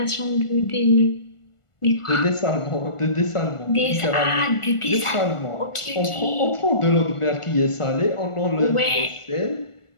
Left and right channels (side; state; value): right; late; 1.4 ms